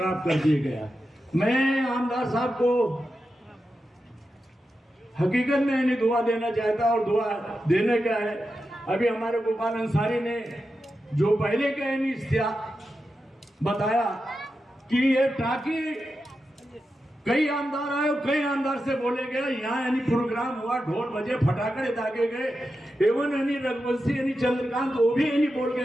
कर दिए गया. मैं आमदार साहब को हकीकत में यानी दुआ देना चाहता और दुआ देने का है. अभी हमारे गोपाल अंसारी ने जो पहले का यानी बताया कि ये टाकी कई आमदार आए, कई आमदार से बोले गए, यहाँ यानी प्रोग्राम हुआ, ढोल बजे, फटाकड़े दागे गए, एवं यानी रघुवंशी यानी चंद्रकांत वो भी यानी बोल के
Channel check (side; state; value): both; normal; correlation 0.90